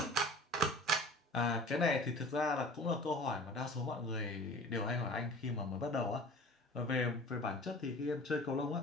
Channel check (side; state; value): both; normal; correlation 0.42